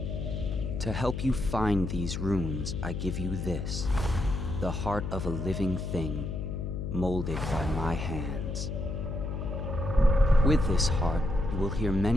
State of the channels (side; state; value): left; noise; hum, 4 dB below the sound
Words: To help you find these runes, I give you this, the heart of a living thing, molded by my hands. With this heart, you will hear